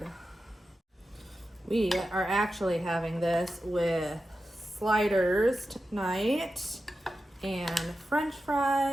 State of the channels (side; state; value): both; normal; correlation 0.91